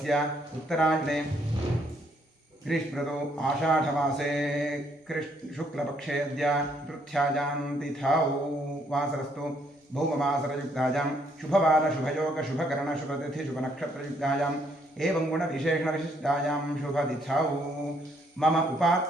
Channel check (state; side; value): normal; both; correlation 0.69